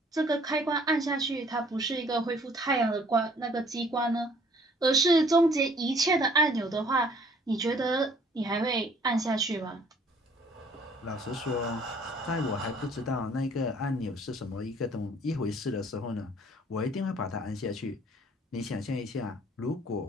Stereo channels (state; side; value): normal; both; correlation 0.58